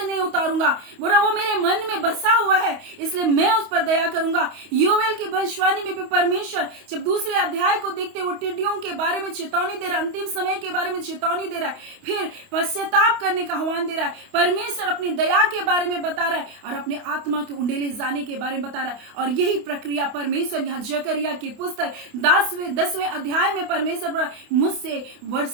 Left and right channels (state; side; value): late; left; 28 ms